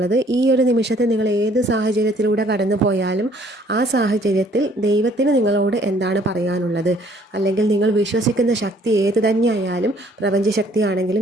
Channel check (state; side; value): normal; both; correlation 0.60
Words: ഈ ഒരു നിമിഷത്തിൽ നിങ്ങൾ ഏത് സാഹചര്യത്തിലൂടെ കടന്നു പോയാലും ആ സാഹചര്യത്തിൽ ദൈവത്തിന് നിങ്ങളോട് എന്താണ് പറയാനുള്ളത്, അല്ലെങ്കിൽ നിങ്ങൾ വിശ്വസിക്കുന്ന ശക്തി ഏത് തന്നെയായാലും,